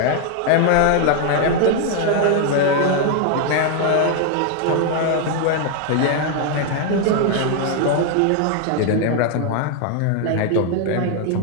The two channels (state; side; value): different; both; correlation 0.00